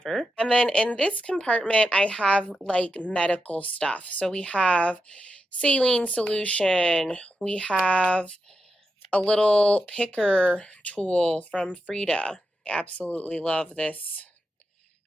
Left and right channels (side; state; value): both; normal; correlation 0.87